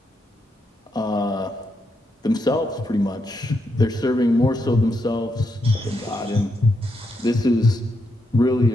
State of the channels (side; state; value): both; normal; correlation 0.81